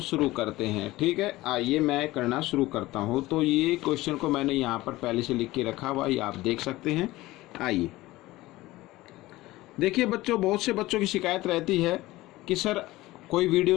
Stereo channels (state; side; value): quieter; right; 18.3 dB